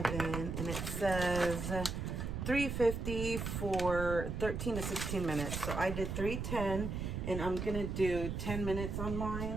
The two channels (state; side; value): noise; right; rumble, 4 dB below the sound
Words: and it says 350 for 13 to 16 minutes. So I did 310, and I'm gonna do 10 minutes on